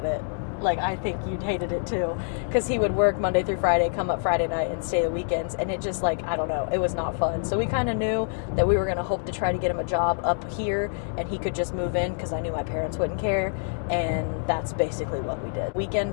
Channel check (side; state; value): right; silent; digital silence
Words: it. I think you'd hated it too, because he would work Monday through Friday, come up Friday night, and stay the weekends, and it just I don't know, it was not fun. So we kind of knew that we were going to hope to try to get him a job up here, and he could just move in, because I knew my parents wouldn't care, and that's basically what we did.